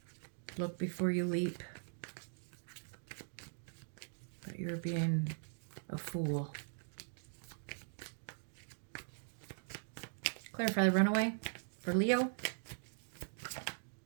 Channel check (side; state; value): left; silent; digital silence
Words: Look before you leap. But you're being a fool. Clarify the runaway for Leo.